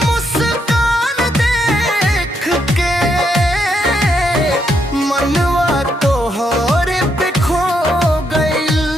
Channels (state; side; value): normal; both; correlation 0.77